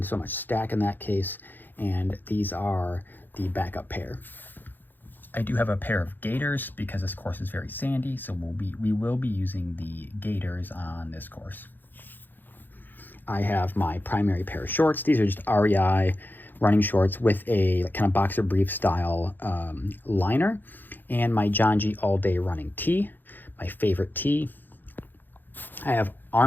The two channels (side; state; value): right; late; 0.090 ms